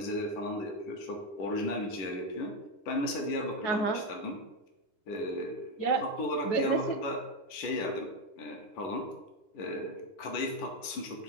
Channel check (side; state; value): right; late; 10 ms